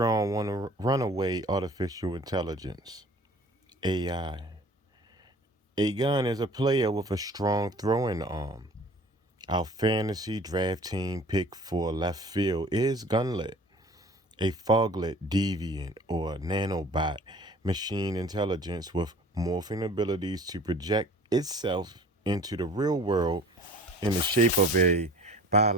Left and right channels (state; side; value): normal; both; correlation 0.47